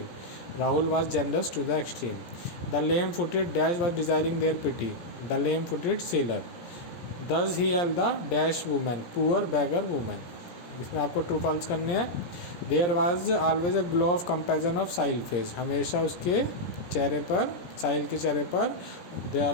Rahul was generous to the extreme. The lame footed dash was desiring their pity, the lame footed sailor. Thus he help the dash women, poor beggar women, इसमें आपको ट्रू फॉल्स करने हैं। There was always a glow of comparison of Sahil face, हमेशा उसके चेहरे पर, साहिल के चेहरे पर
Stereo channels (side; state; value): right; late; 17 ms